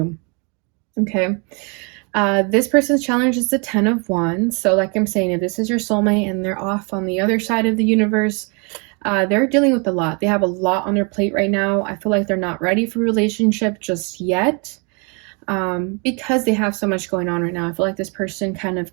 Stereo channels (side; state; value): left; quieter; 33.2 dB